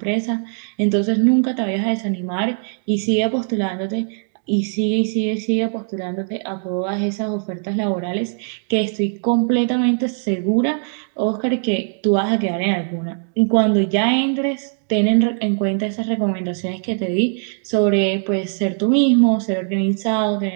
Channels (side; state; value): left; silent; 60 dB below the other